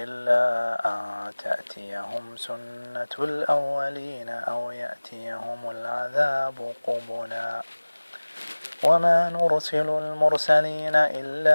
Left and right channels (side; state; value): both; inverted; correlation -1.00